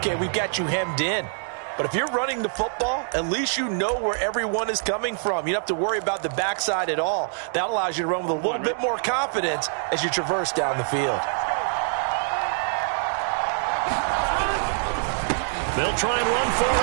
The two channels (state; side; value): silent; left; digital silence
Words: we've got you hemmed in. But if you're running the football, at least you know where everyone is coming from. You don't have to worry about the backside at all. That allows you to run with a little bit more confidence as you traverse down the field. They'll try and run for it